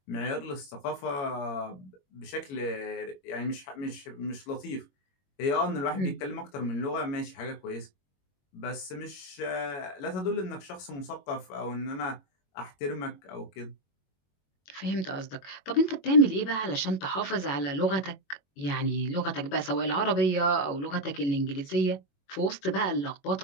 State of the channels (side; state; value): right; late; 21 ms